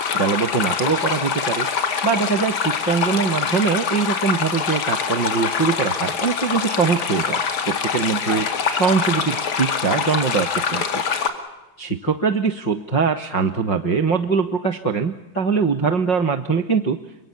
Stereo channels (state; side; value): late; right; 5.5 ms